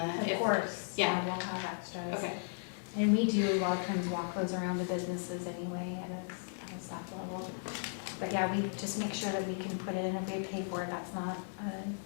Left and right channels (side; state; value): right; silent; 54 dB below the other